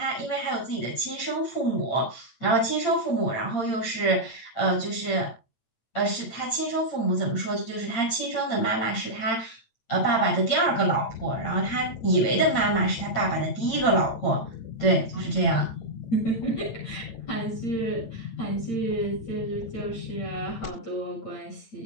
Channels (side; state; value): right; late; 8.9 ms